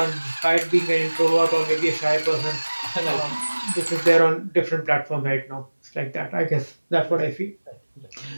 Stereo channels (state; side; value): inverted; both; correlation -1.00